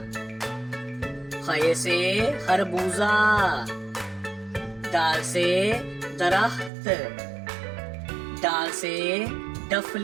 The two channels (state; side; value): drops out; left; at 6.7 s